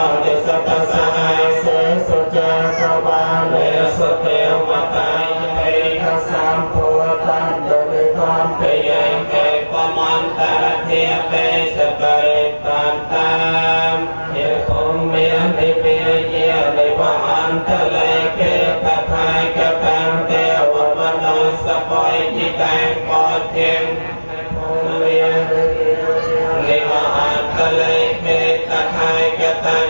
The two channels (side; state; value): both; inverted; correlation -1.00